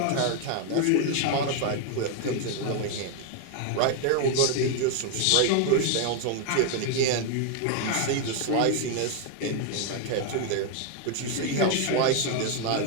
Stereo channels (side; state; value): both; different; correlation 0.01